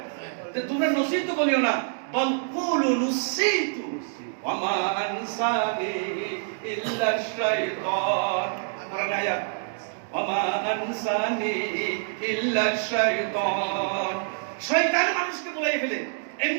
তোমরা নসিতু বলিও না বল কুলু নসিতু ওয়া মা আনসানি ইল্লা শাইতান কোরআন আয়াত ওয়া আনসানি ইল্লা শাইতান শয়তান মানুষকে বলাই ফেলে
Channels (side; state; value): left; silent; digital silence